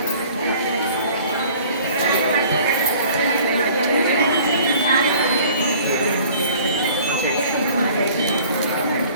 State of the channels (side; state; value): both; inverted; correlation -0.50